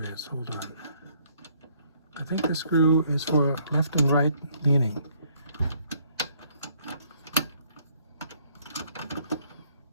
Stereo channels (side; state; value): both; inverted; correlation -0.66